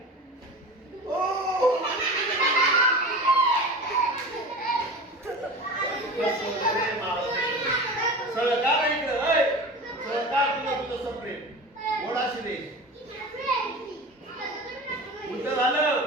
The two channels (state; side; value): normal; both; correlation 0.33